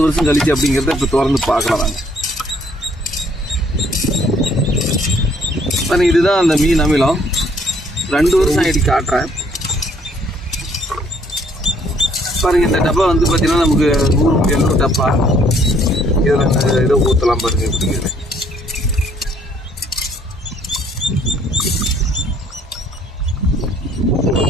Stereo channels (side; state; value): both; normal; correlation 0.63